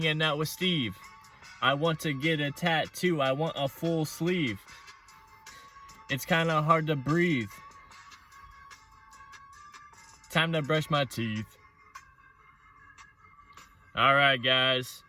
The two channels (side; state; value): both; identical; correlation 1.00